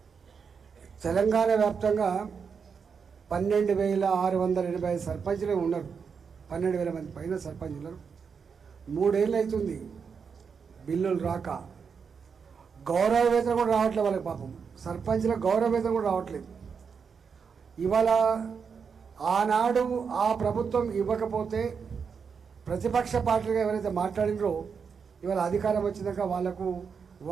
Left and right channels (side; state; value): left; quieter; 6.1 dB